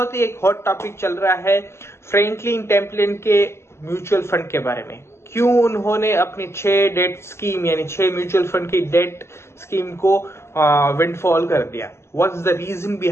ही एक हॉट टॉपिक चल रहा है फ्रैंकलिन टेम्पलिन के म्यूचुअल फंड के बारे में। क्यों उन्होंने अपनी 6 डेट स्कीम यानी 6 म्यूचुअल फंड की डेट स्कीम को विंडफॉल कर दिया, what's the reason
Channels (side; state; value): right; late; 0.13 ms